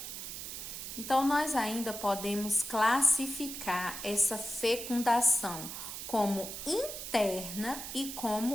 Então, nós ainda podemos classificar essa fecundação como interna e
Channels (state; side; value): noise; right; hiss, 8 dB below the sound